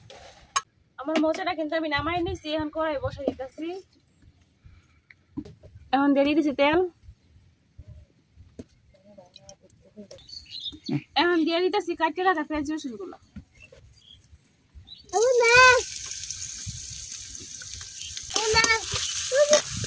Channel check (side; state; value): both; identical; correlation 1.00